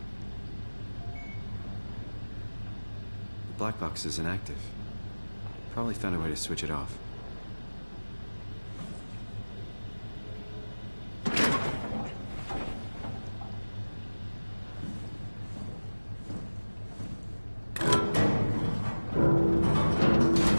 The black box is inactive. Probably found a way to switch it off.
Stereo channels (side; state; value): both; inverted; correlation -1.00